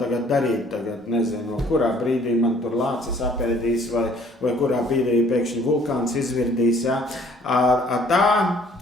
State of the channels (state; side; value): normal; both; correlation 0.58